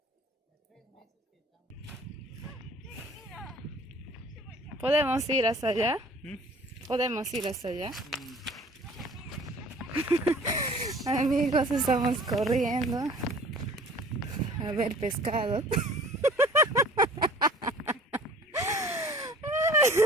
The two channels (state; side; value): normal; both; correlation 0.49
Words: en 3 meses que estamos... ¿Podemos ir hasta allá? ¿Podemos ir hasta allá? Amigos, estamos corriendo a ver pescado.